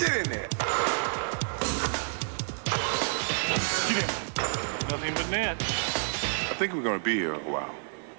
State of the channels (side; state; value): left; silent; digital silence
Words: in there. Get in. Nothing but net. I think we're gonna be here a while.